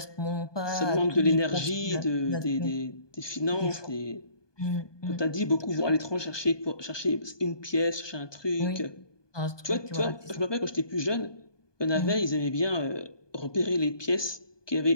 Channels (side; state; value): right; late; 1.2 ms